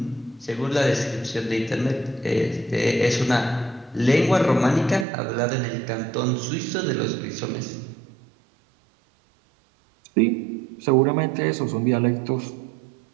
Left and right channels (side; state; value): left; drops out; at 5.1 s